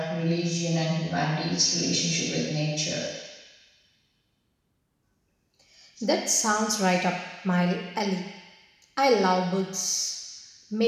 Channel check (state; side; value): identical; both; correlation 1.00